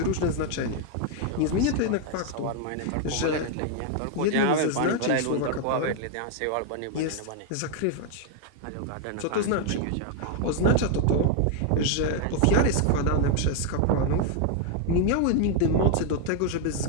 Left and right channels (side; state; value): both; different; correlation 0.00